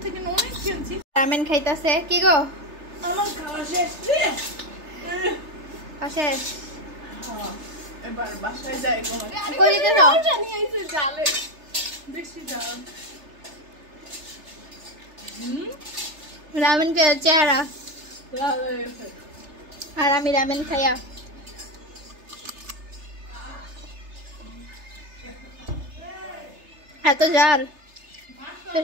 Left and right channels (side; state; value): left; late; 3.3 ms